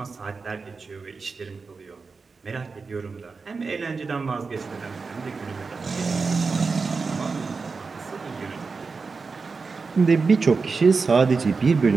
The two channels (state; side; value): quieter; left; 4.6 dB